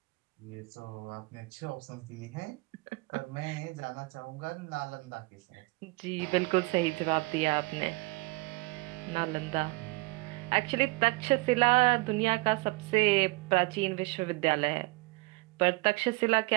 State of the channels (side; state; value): left; quieter; 24.7 dB